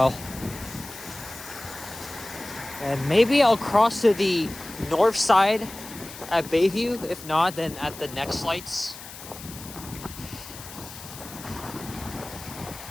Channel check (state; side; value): noise; left; hiss, 14 dB below the sound